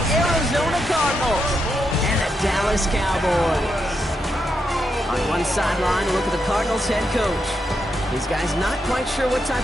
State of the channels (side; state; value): both; normal; correlation 0.83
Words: Arizona Cardinals and the Dallas Cowboys. On one sideline, a look at the Cardinals head coach. These guys not quite sure what